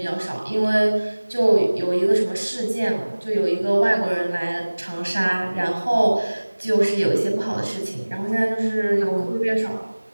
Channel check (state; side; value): inverted; both; correlation -1.00